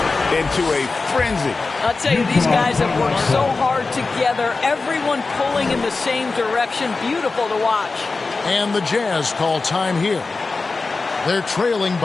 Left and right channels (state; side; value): quieter; right; 3.9 dB